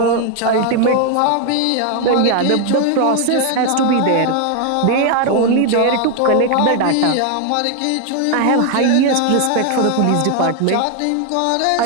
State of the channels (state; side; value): different; both; correlation 0.00